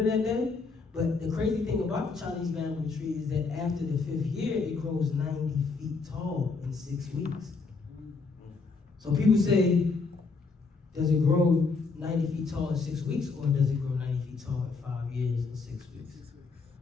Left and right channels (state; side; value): quieter; right; 4.3 dB